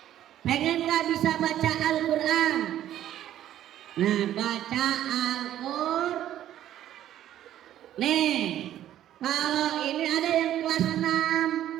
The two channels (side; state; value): left; quieter; 12.0 dB